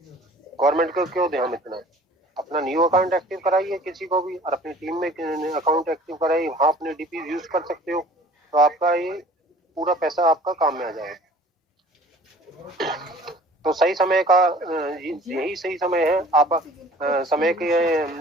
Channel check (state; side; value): normal; both; correlation 0.49